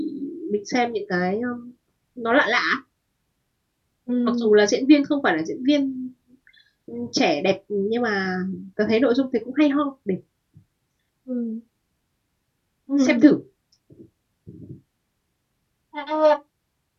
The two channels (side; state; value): both; identical; correlation 1.00